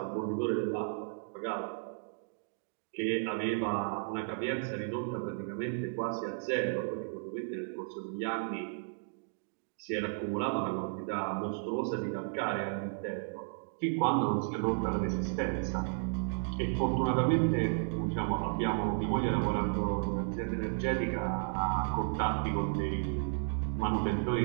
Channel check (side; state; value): left; silent; digital silence